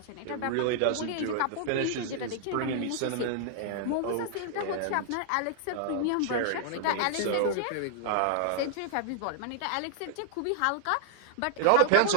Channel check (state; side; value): different; both; correlation -0.01